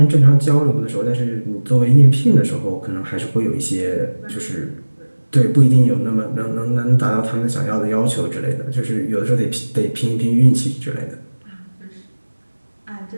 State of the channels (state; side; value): inverted; both; correlation -1.00